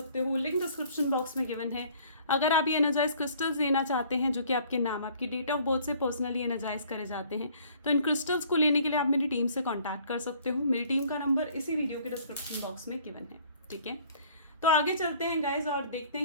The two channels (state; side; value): inverted; both; correlation -0.55